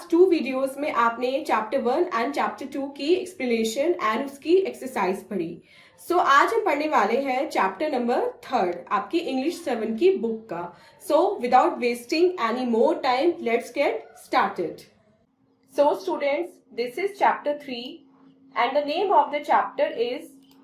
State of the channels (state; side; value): identical; both; correlation 1.00